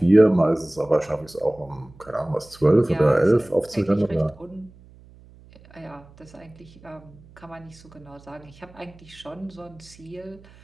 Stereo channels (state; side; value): noise; right; hum, 24 dB below the sound